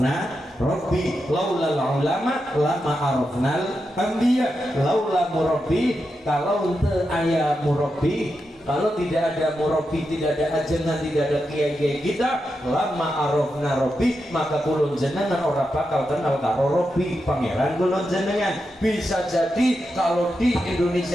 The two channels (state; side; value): normal; both; correlation 0.87